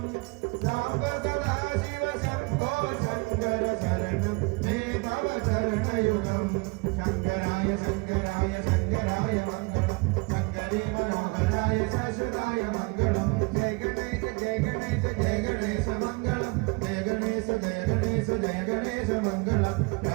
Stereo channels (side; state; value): left; quieter; 27.9 dB